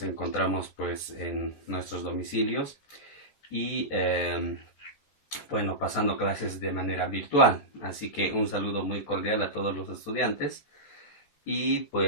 encontramos pues en nuestros domicilios y bueno, pasando clases de manera virtual. Así que un saludo muy cordial a todos los estudiantes y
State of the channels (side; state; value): right; late; 14 ms